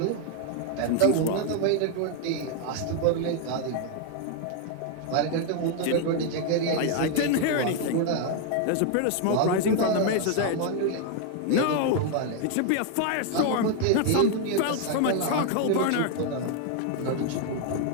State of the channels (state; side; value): different; both; correlation 0.00